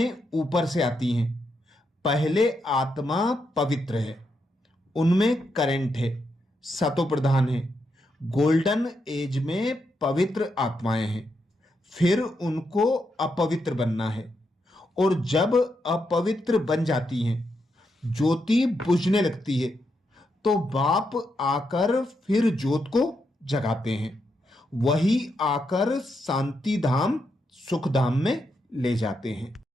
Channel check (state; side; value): normal; both; correlation 0.82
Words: ऊपर से आती हैं। पहले आत्मा पवित्र है, उनमें करंट है, सतो प्रधान है। गोल्डन एज में पवित्र आत्माएं हैं। फिर उनको अपवित्र बनना है, और जब अपवित्र बन जाती हैं, ज्योति बुझने लगती है, तो बाप आकर फिर ज्योत को जगाते हैं। वही आकर शांति धाम सुख धाम में ले जाते हैं।